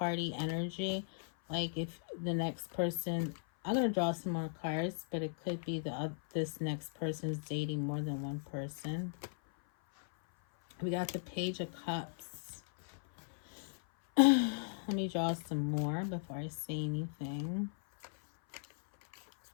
energy. Like if the next person, I'm going to draw some more cards, but it could be this next person is dating more than one person. We got the Page of Cups. Let me draw some more before I say anything.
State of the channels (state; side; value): silent; right; 53 dB below the other